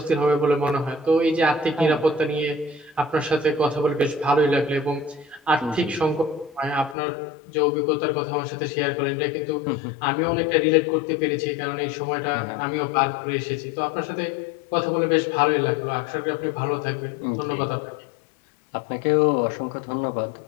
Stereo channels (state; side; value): drops out; right; at 7.0 s